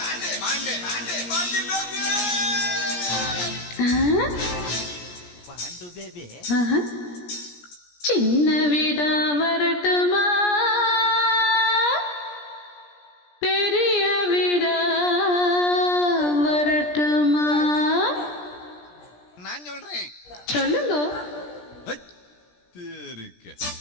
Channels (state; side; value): late; right; 17 ms